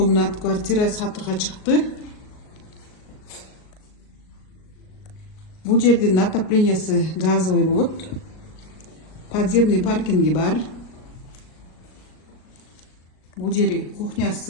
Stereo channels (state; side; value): late; right; 38 ms